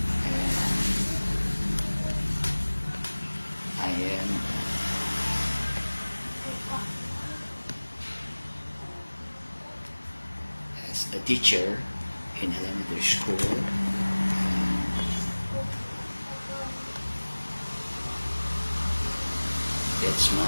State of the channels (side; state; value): both; inverted; correlation -1.00